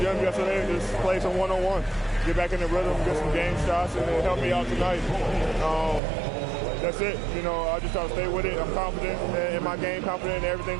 yesterday and just played some one-on-one. Get back in the rhythm, get some game shots, and it helped me out tonight. That's it. You know, I just try to stay with it. I'm confident in my game, confident in everything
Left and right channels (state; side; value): drops out; left; at 6.0 s